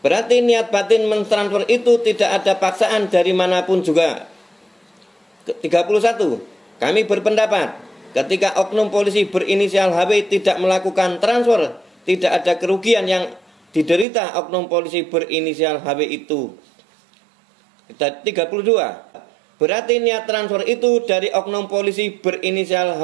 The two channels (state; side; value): drops out; left; at 14.1 s